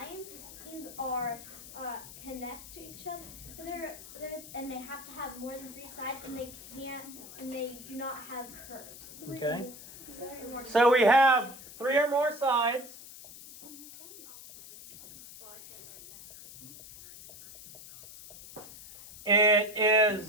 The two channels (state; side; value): noise; left; hiss, 15 dB below the sound